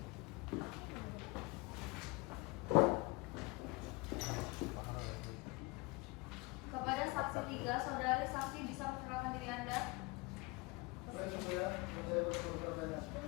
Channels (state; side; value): quieter; right; 25.2 dB